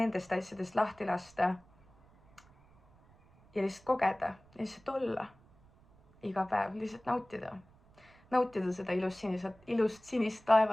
asjadest lahti lasta ja lihtsalt kogeda, lihtsalt olla iga päev, lihtsalt nautida. Nautida seda ilust sinist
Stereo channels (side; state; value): right; noise; rumble, 28 dB below the sound